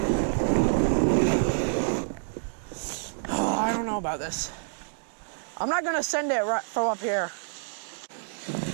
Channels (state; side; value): silent; left; digital silence